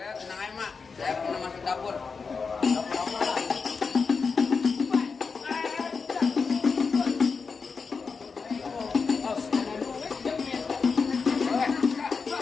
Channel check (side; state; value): right; quieter; 5.1 dB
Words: aja, Mak. Saya pernah masuk dapur.